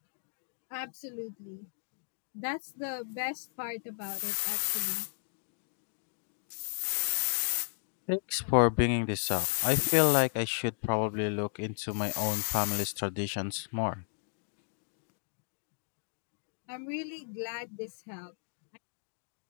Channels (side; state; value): right; silent; digital silence